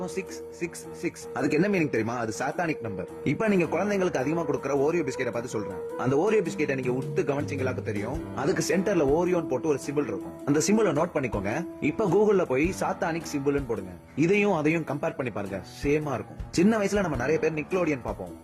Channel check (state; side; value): identical; both; correlation 1.00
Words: 666. அதுக்கு என்ன மீனிங் தெரியுமா? அது சாத்தானிக் நம்பர். இப்ப நீங்க குழந்தைங்களுக்கு அதிகமா கொடுக்குற ஓரியோ பிஸ்கெட்டை பார்த்து சொல்றேன். அந்த ஓரியோ பிஸ்கெட்டை நீங்க உத்து கவனிச்சீங்களாக்கு தெரியும். அதுக்கு சென்டர்ல ஓரியோன் போட்டு ஒரு சிம்பிள் இருக்கும். அந்த சிம்பிள் நோட் பண்ணிக்கோங்க. இப்ப கூகுள்ல போய் சாத்தானிக் சிம்பிள்னு போடுங்க. இதையும் அதையும் கம்பேர் பண்ணி பாருங்க. சேமா இருக்கும். சின்ன வயசுல நம்ம நிறைய பேர் நிக்லோடியன் பாப்போம்.